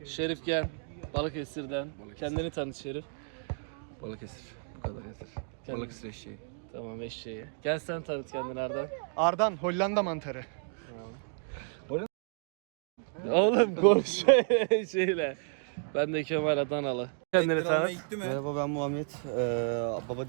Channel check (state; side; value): silent; left; 57 dB below the other